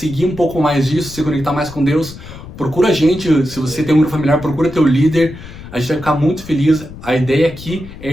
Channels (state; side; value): noise; left; rumble, 15 dB below the sound